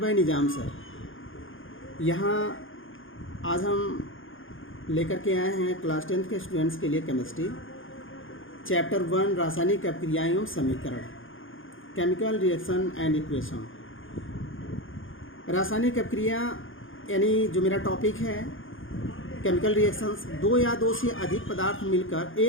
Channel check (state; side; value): late; right; 0.58 ms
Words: Nizam sir. यहाँ आज हम लेकर के आए हैं क्लास 10th के स्टूडेंट्स के लिए केमिस्ट्री चैप्टर 1 रासायनिक अभिक्रियाएं एवं समीकरण, केमिकल रिएक्शन एंड इक्वेशन। रासायनिक अभिक्रिया यानी जो मेरा टॉपिक है केमिकल रिएक्शंस, दो या दो से अधिक पदार्थ मिलकर